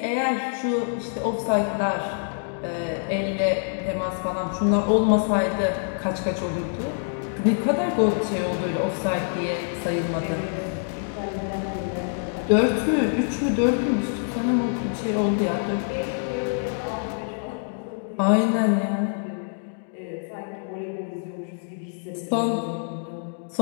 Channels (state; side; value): silent; right; digital silence